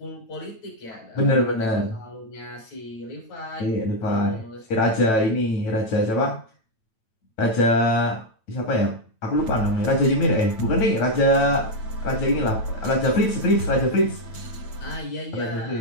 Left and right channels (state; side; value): late; right; 9.0 ms